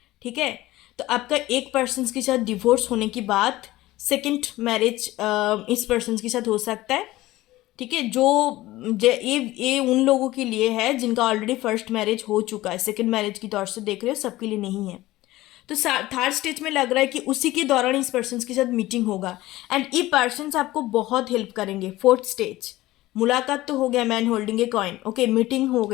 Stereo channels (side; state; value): right; quieter; 17.3 dB